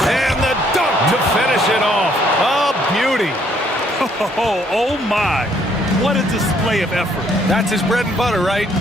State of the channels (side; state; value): both; normal; correlation 0.67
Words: the dunk to finish it off. A beauty. Oh my. What a display of effort. That's his bread and butter, right?